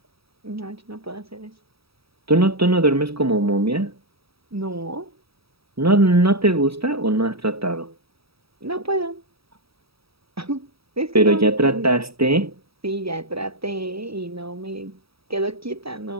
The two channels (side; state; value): left; late; 0.77 ms